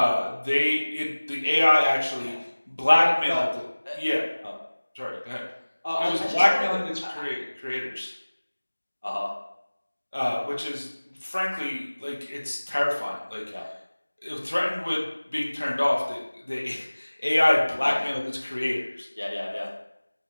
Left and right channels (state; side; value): inverted; both; correlation -1.00